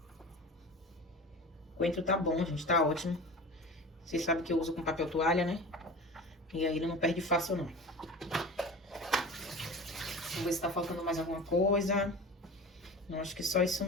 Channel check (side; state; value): both; normal; correlation 0.35